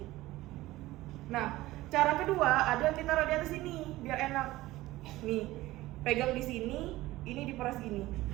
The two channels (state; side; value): quieter; left; 17.5 dB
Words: Nah, cara kedua ada kita taruh di atas sini biar enak. Nih, pegang di sini, ini diperas gini.